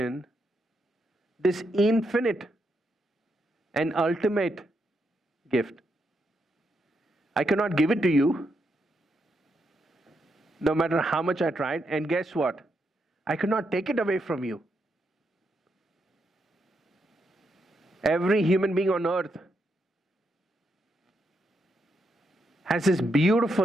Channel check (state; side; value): normal; both; correlation 0.81